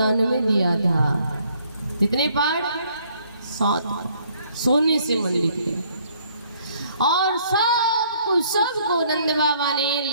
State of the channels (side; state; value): both; inverted; correlation -0.64